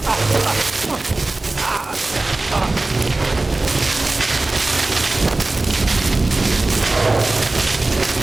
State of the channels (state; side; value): quieter; left; 3.0 dB